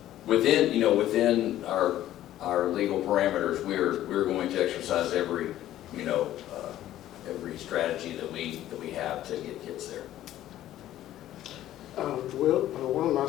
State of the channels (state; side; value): quieter; right; 13.2 dB